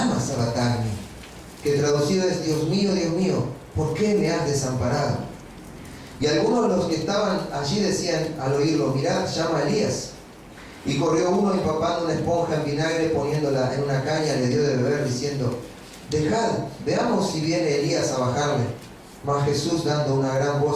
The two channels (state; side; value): identical; both; correlation 1.00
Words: sabactani, que traducido es: Dios mío, ¿por qué me has desamparado? Y algunos de los que estaban allí decían al oírlo: mirad, llama a Elías. Y corrió uno empapando una esponja en vinagre, poniéndola en una caña, le dio de beber, diciendo: dejad, veamos si viene Elías a bajarle. Mas Jesús, dando una gran